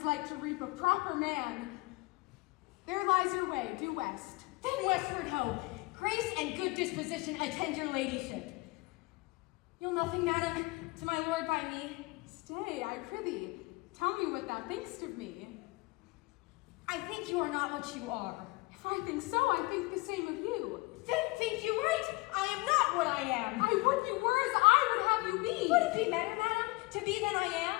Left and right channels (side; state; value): right; quieter; 24.3 dB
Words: like to reap a proper man. There lies your way, due west. Then westward ho! Grace and good disposition attend your ladyship. Nothing, madam, to my lord by me. Stay, I prithee. Tell me what thou thinkst of me. I think you are not what you are. If I think so, I think the same of you. Then think you right. I am not what I am. I would you were as I would have you be. Would it be better, madam, to be than I